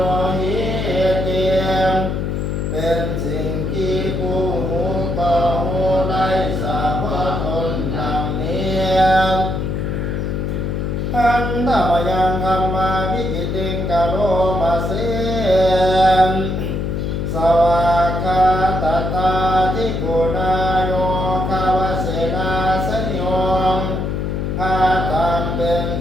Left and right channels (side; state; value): left; noise; hum, 1 dB below the sound